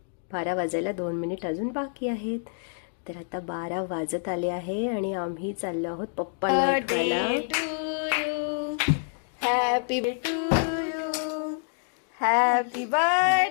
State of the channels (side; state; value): right; silent; digital silence